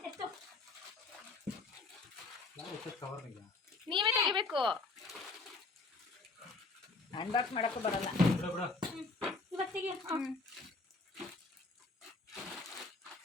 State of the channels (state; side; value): quieter; right; 3.7 dB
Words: ನೀವೇ ತೆಗಿಬೇಕು. ಅನ್ಬಾಕ್ಸ್ ಮಾಡಕ್ಕೂ ಬರಲ್ಲ. ಇವತ್ತಿಗೆ